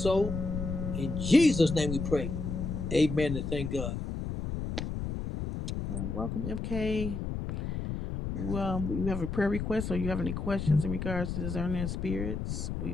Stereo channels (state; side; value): noise; left; rumble, 4 dB below the sound